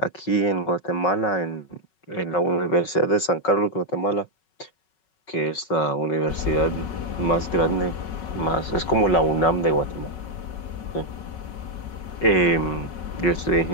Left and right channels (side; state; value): right; late; 5.4 ms